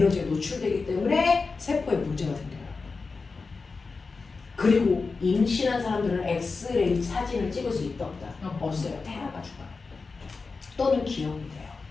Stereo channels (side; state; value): right; quieter; 4.3 dB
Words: 노출되기 때문에 세포에 문제가 생겨요. 그리고 임신한 사람들은 엑스레이 사진을 찍을 수 있다 없다? 없어요. 태아가 죽어요. 또는 기형이 돼요.